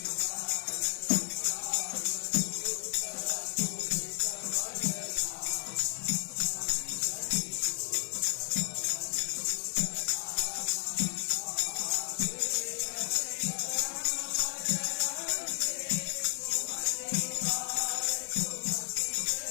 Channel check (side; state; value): right; silent; digital silence